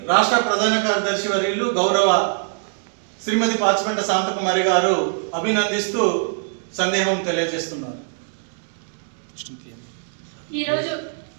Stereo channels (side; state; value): left; silent; digital silence